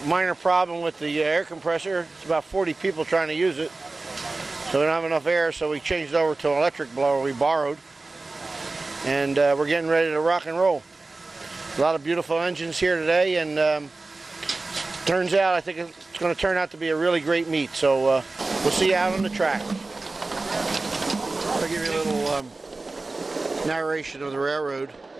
Minor problem with the air compressor. It's about 40 people trying to use it. So we don't have enough air, so we changed over to an electric blower we borrowed. And we're getting ready to rock and roll. A lot of beautiful engines here today, and turns out I think it's going to turn out to be a really great meet. So we'll see you out on the track. I'll give you a little narration of the railroad.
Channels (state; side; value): quieter; left; 3.4 dB